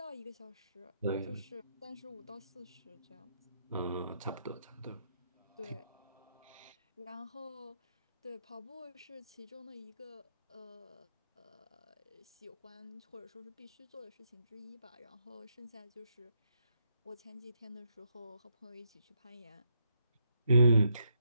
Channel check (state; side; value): inverted; both; correlation -0.80